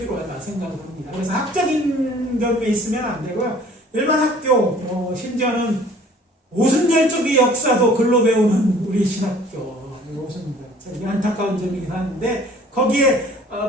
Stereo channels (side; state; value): both; normal; correlation 0.52